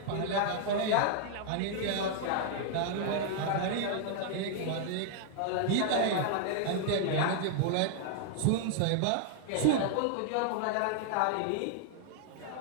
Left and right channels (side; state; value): both; different; correlation -0.01